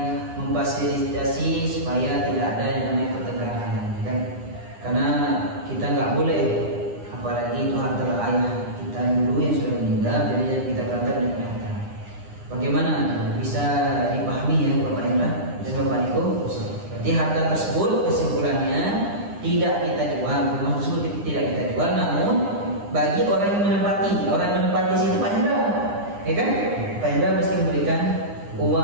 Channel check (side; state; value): left; late; 9.9 ms